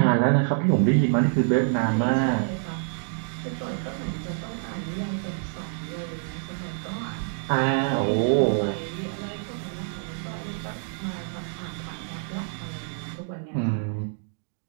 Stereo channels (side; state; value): left; silent; digital silence